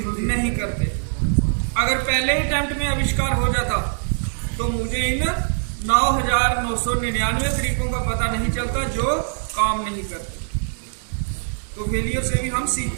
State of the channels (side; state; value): left; silent; 64 dB below the other